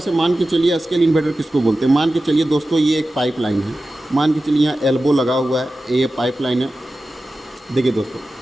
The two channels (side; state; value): both; normal; correlation 0.94